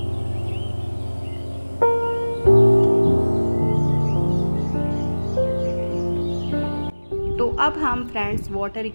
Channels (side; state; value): both; inverted; correlation -1.00